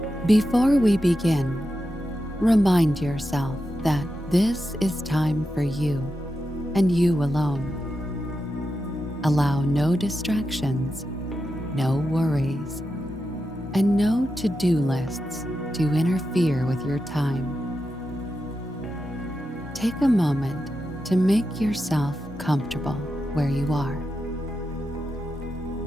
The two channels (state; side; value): normal; both; correlation 0.89